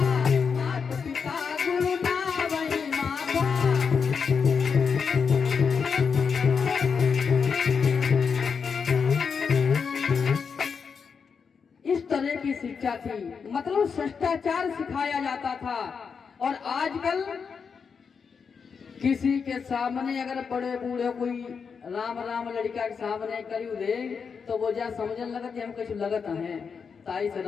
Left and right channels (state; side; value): quieter; right; 6.0 dB